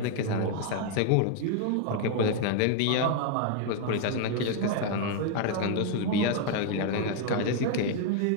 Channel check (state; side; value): different; both; correlation 0.00